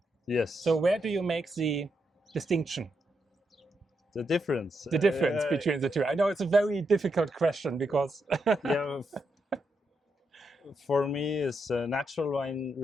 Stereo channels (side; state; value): both; normal; correlation 0.82